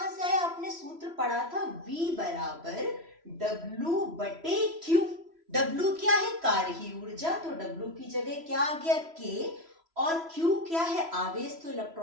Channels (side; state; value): left; late; 3.0 ms